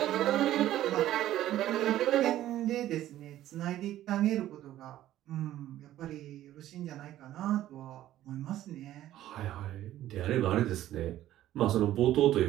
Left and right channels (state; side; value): quieter; left; 13.4 dB